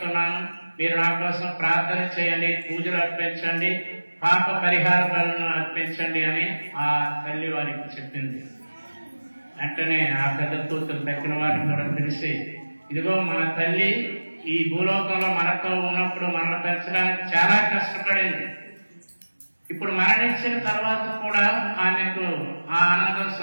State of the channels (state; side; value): inverted; both; correlation -1.00